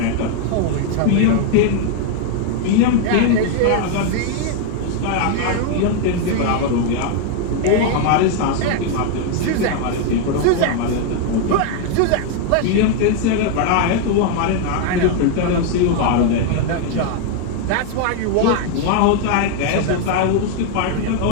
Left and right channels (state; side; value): different; both; correlation 0.01